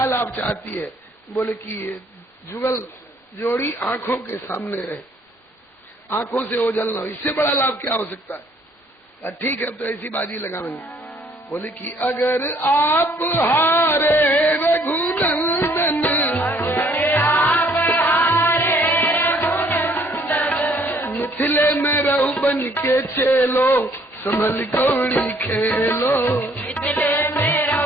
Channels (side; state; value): both; normal; correlation 0.62